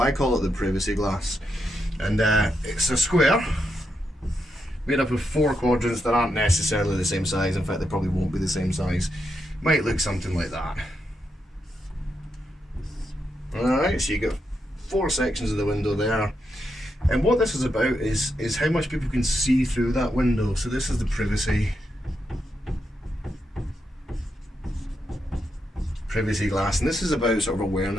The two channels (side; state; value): both; normal; correlation 0.83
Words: call it the privacy glass, and it's a square made up of 4 quadrants that aren't necessarily the same size. In fact, they probably won't be the same size. Might look something like that. Alright, so you got 4 sections of the window there. And what this is about is how much people can see through that window. So this is the privacy glass, and this is about sort of